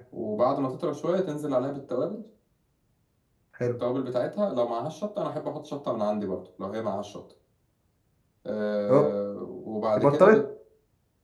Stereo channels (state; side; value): identical; both; correlation 1.00